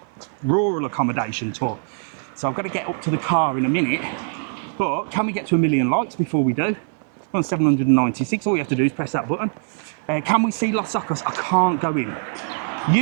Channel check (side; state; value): left; silent; digital silence